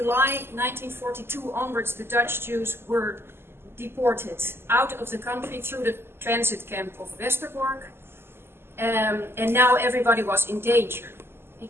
1942 onwards, the Dutch Jews were deported out of the country through the transit camp of Westerbork. And now everybody was in danger.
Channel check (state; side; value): late; left; 0.12 ms